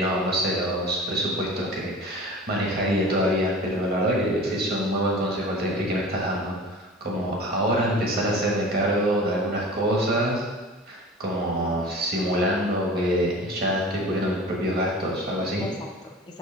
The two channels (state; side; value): normal; both; correlation 0.39